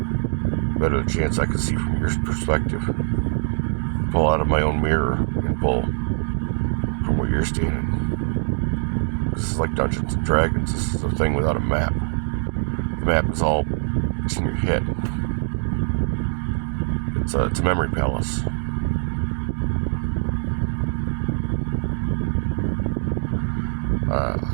better the chance I can see from your perspective. Pull out of my own mirror and pull from where you're standing. This is like Dungeons and Dragons. This is a thing without a map. The map is all, it's in your head. It's a memory palace.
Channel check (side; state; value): left; silent; 60 dB below the other